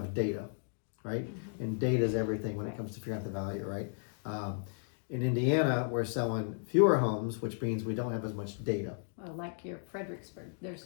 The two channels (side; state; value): right; silent; digital silence